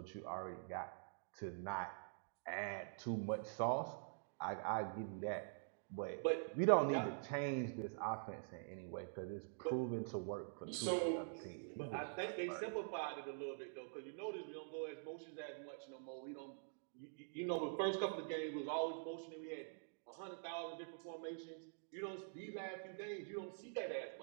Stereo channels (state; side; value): silent; left; digital silence